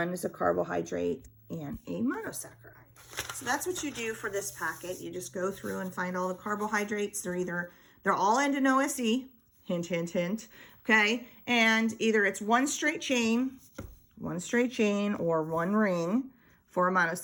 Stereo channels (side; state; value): both; identical; correlation 1.00